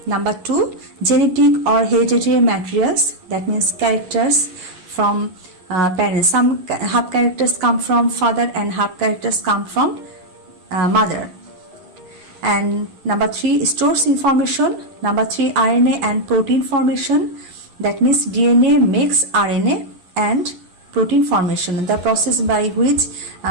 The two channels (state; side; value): late; left; 11 ms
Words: Number 2, genetic or hereditary materials, that means characters from parents. Some half characters come from father and half characters come from mother. And number 3, stores information. Number 3, RNA and protein formation, that means DNA makes RNA and protein formation. The process by which